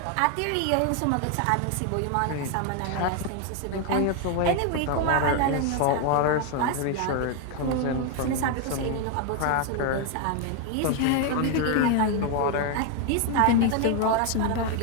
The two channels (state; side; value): different; both; correlation 0.01